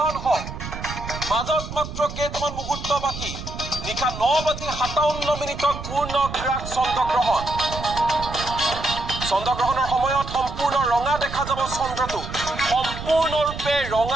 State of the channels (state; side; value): noise; right; rumble, 9 dB below the sound